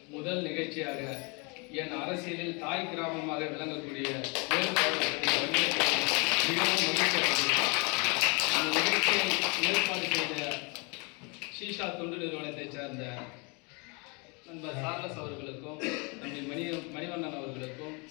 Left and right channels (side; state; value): right; quieter; 31.3 dB